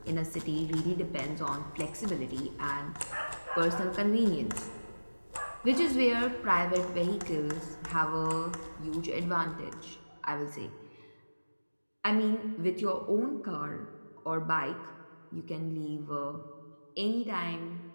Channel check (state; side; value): inverted; both; correlation -1.00